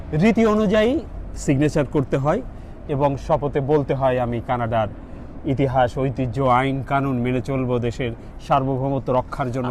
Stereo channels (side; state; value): both; identical; correlation 1.00